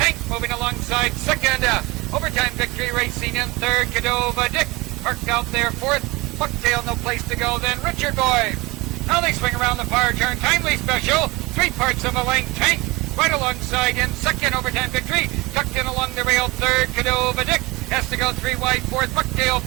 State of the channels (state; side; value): quieter; left; 23.5 dB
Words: moving alongside second. Overtime victory racing in third. Cordova Dick parked out there fourth. Bucktail no place to go. Then Richard Boy. Now they swing around the far turn. Timely Special. 3/4 of a length. Tank right alongside in second. Overtime victory. Tucked in along the rail third. Cordova Dick has to go 3 wide fourth. Bucktail